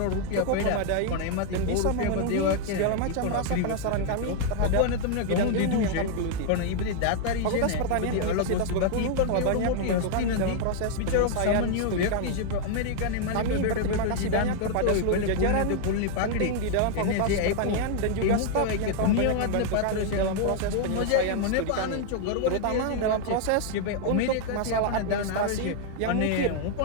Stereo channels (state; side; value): different; both; correlation 0.00